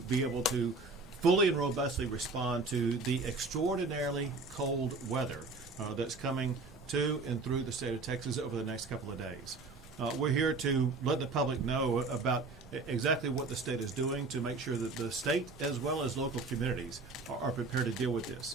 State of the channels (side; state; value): left; quieter; 3.7 dB